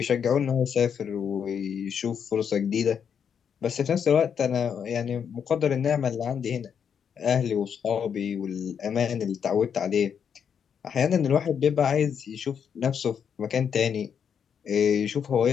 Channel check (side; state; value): right; quieter; 7.5 dB